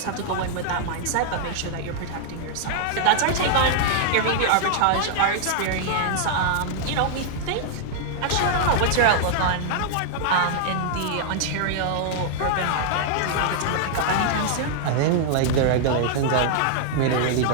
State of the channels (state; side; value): different; both; correlation -0.01